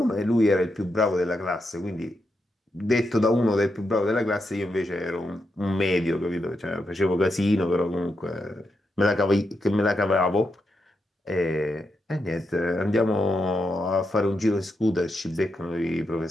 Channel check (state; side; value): normal; both; correlation 0.84